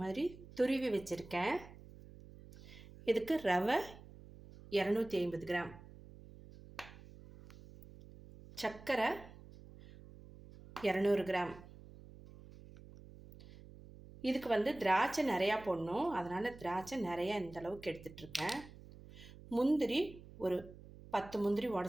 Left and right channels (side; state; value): right; noise; hum, 18 dB below the sound